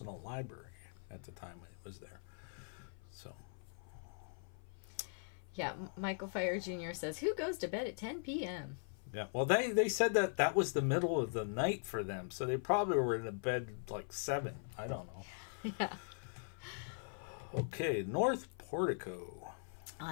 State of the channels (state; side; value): silent; right; 51 dB below the other